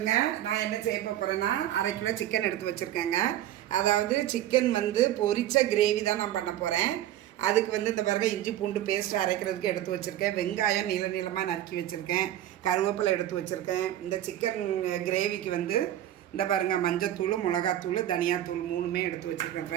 நான் என்ன செய்ய போகிறேன்னா, 1/2 கிலோ சிக்கன் எடுத்து வச்சுருக்கேங்க. அதாவது சிக்கன் பொரிச்ச கிரேவி தான் நான் பண்ண போகிறேன். அதுக்கு இந்த பிறகு இஞ்சி பூண்டு பேஸ்ட் அரைக்கிறதுக்கு எடுத்து வச்சுருக்கேன். வெங்காயம் நீள நீளமாக நறுக்கி வச்சுருக்கேன். கருவேப்பிலை எடுத்து வச்சுருக்கேன். இந்த சிக்கன் கிரேவிக்கு இந்த பாருங்கள், மஞ்சத்தூள், மிளகாத்தூள், தனியாத்தூள் 3மே எடுத்து வச்சுருக்கேன்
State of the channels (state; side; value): quieter; left; 12.6 dB